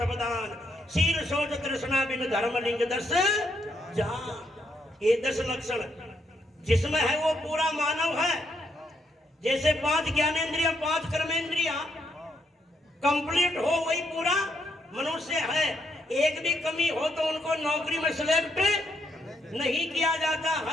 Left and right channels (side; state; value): both; normal; correlation 0.76